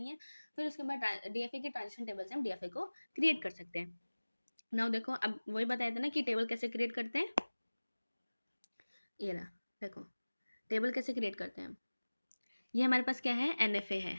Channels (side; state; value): both; inverted; correlation -1.00